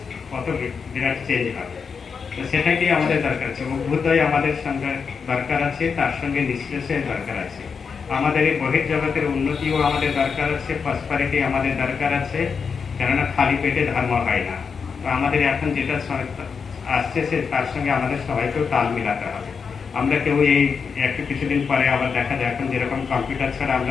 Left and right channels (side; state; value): right; quieter; 5.8 dB